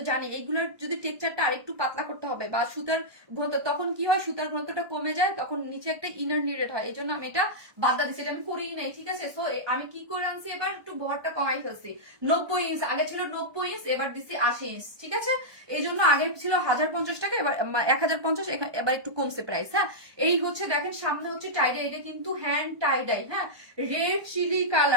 জানি এগুলার যদি টেক্সচারটা আরেকটু পাতলা করতে হবে, বা সুতার ঘনত্ব, তখন কি হয় সুতার ঘনত্বটা কমে যায়, তখন নিচে একটা ইনার নিডেড হয়, এই জন্য আমি এটা বাদ দিচ্ছি, এটা আমি করিই নাই, ঠিক আছে। সো আমি কি করে আনছি, এবার একটু বহরটা কমাই ফেলছি, 90 ইঞ্চ, আগে ছিল 90 ইঞ্চ, এবার দিচ্ছি 80 ইঞ্চ, ঠিক আছে। এই জন্য আগে ছিল 1050 টাকা, এবার 1050, এবার একটু কমছে প্রাইস, হ্যাঁ। এই হচ্ছে দেখেন সামনে হচ্ছে টাইডাই, এটা কিন্তু হ্যান্ড টাইডাই, হ্যাঁ রেড চিলি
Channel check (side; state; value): left; late; 1.2 ms